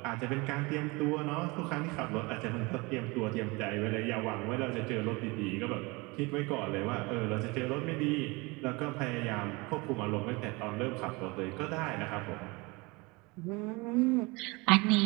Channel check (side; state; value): left; quieter; 25.6 dB